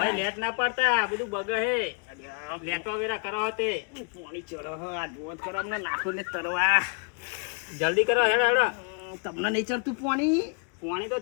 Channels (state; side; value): quieter; right; 34.6 dB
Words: લેટ ના પાડતા, બધું બગે હે. લેટવા વેરા કરો હતે. પાણી ચડો આ જોત ખરાબ ના નાખો ને તરવા. જલ્દી કરો, હેડો હેડો. તમને નહીં ચડતું પાણી? પાણી તો